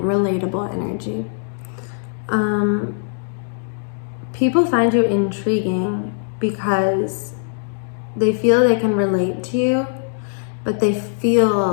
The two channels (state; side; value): silent; right; digital silence